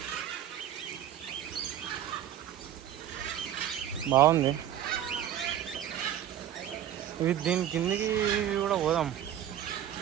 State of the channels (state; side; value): quieter; left; 10.8 dB